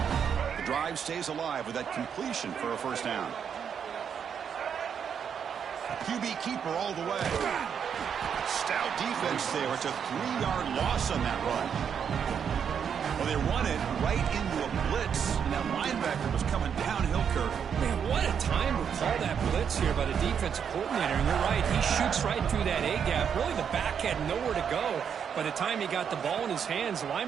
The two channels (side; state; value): left; quieter; 7.6 dB